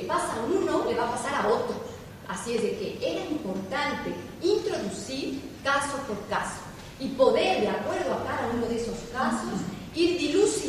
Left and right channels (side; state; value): both; identical; correlation 1.00